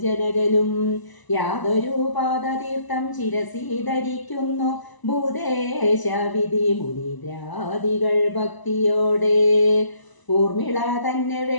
ജനകനും. യാതൊരു പാദതീർത്ഥം ശിരസി ധരിക്കുന്നു ഭൂദേശവിധി മുനിദ്രാദികൾ ഭക്തിയോടെ. ഊർമിള തന്നെ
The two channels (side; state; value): right; late; 1.0 ms